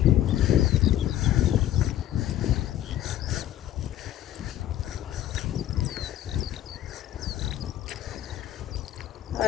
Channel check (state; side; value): quieter; right; 12.4 dB